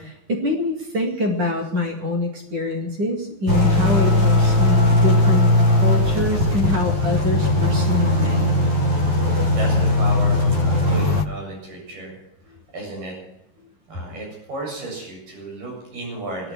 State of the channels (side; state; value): left; late; 12 ms